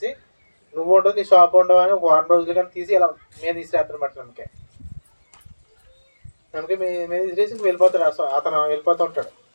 నువ్వు ఉండవు నీ షాప్ ఉండవు అని ఒక 1 రోజులు కానీ తీసి ఇలా మీద తీసిరేస్తానమాట. నిమ్మకాయ మీద తీసేసి వెళ్ళిపోతాడు. అతను వెళ్ళిపోతూ ఉంటాడు.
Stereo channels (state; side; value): inverted; both; correlation -1.00